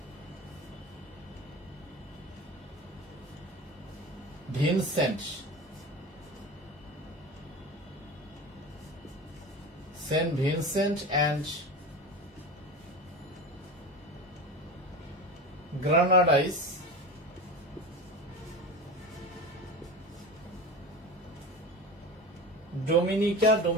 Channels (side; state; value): both; normal; correlation 0.30